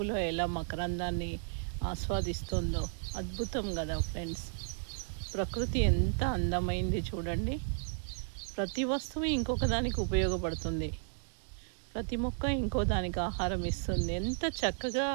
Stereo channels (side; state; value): left; silent; digital silence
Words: ఎలా మకరందాన్ని ఆస్వాదిస్తుందో. అద్భుతం కదా ఫ్రెండ్స్. ప్రకృతి ఎంత అందమైంది చూడండి. ప్రతి వస్తువు ఇంకొక దానికి ఉపయోగపడుతుంది. ప్రతి మొక్క ఇంకో దానికి ఆహారం ఇస్తుంది. ఎంత చక్కగా